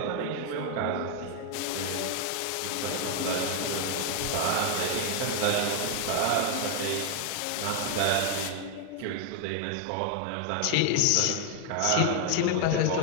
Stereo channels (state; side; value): different; both; correlation 0.00